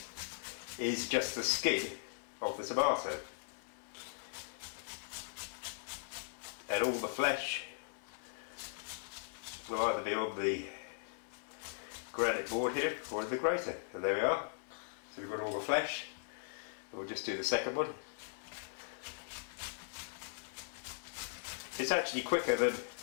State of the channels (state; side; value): silent; right; 52 dB below the other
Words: is just the skin of the tomato. And all the flesh will either be on the granite board here or in the grater. And there we are. So we've got all the flesh. We'll just do the second one. It's actually quicker than